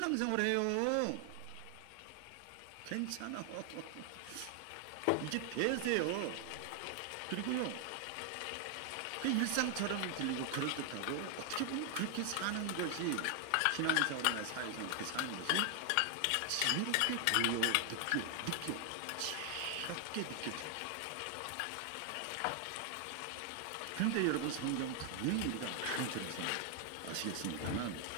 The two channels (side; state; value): both; different; correlation 0.00